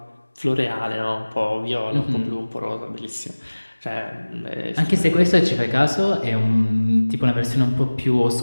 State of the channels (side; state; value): both; inverted; correlation -1.00